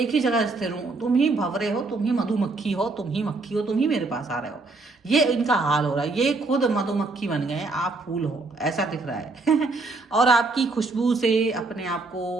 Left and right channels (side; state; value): left; quieter; 3.5 dB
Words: ही जगह स्थिर हूँ, तुम ही भंवरे हो, तुम ही मधुमक्खी हो, तुम ही मक्खी हो, तुम ही मेरे पास आ रहे हो। ये इनका हाल हो रहा है, ये खुद मधुमक्खी बन गए, आप फूल हो, ऐसा दिख रहा है। और आपकी खुशबू से अपने आप को